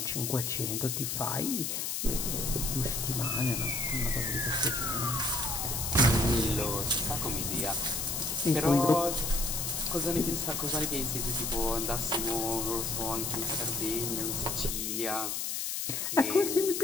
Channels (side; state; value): left; noise; hiss, 1 dB below the sound